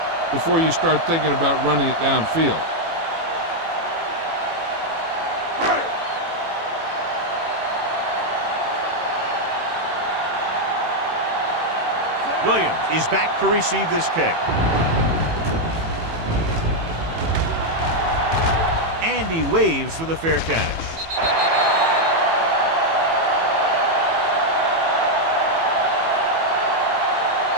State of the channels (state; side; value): late; left; 18 ms